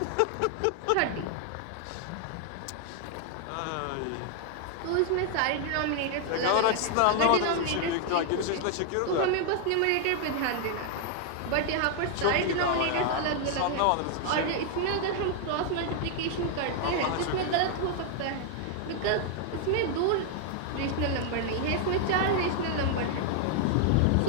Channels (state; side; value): different; both; correlation 0.00